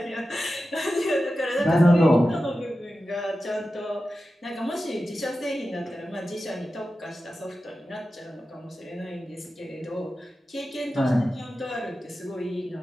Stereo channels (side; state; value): both; normal; correlation 0.93